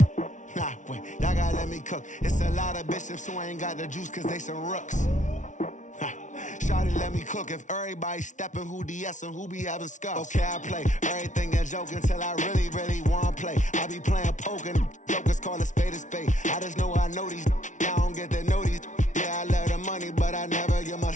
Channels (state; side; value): late; right; 0.36 ms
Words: Nah, wait, y'all gotta let me cook. It's a lot of bishops who ain't got the juice cause they some rooks. Shawty let me cook. If everybody stepping, who DS and who be having scuffs? Okay, I play everything a joke until I really wanna play. I be playing poker, jokers call a spade a spade. I just know I know these, y'all don't get to know these. Yeah, I love the money, but I never give my